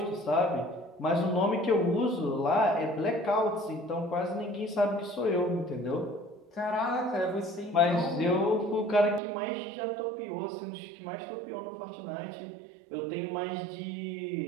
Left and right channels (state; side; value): drops out; left; at 9.2 s